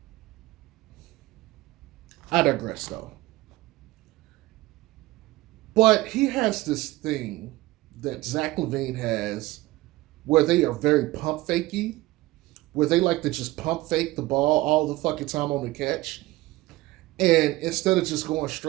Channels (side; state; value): left; quieter; 18.6 dB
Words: I digress though. But he has this thing that Zach LaVine has where they are very pump fakey, where they like to just pump fake the ball all the fucking time on the catch. And instead of just going